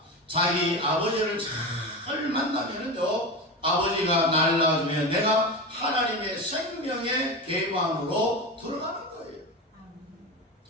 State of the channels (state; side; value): normal; both; correlation 0.22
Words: 자기 아버지를 잘 만나면은요, 아버지가 날 낳아주면 내가 하나님의 생명의 계방으로 들어가는 거예요.